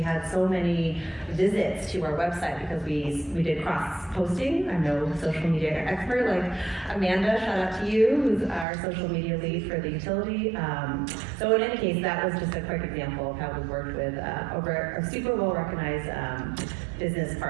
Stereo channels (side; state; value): left; drops out; at 8.7 s